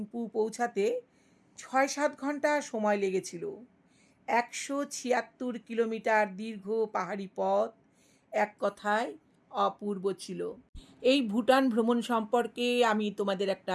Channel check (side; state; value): both; identical; correlation 1.00